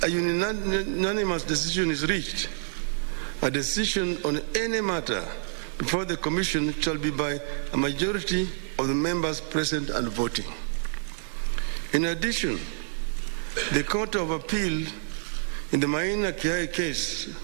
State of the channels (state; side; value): silent; left; digital silence